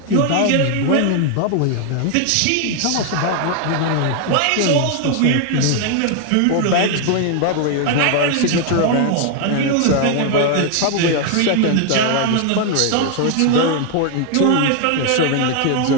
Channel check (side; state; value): both; different; correlation 0.00